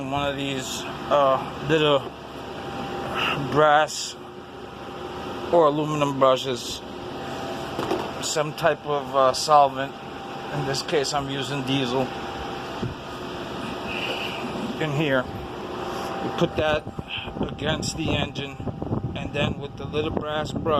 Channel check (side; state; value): both; identical; correlation 1.00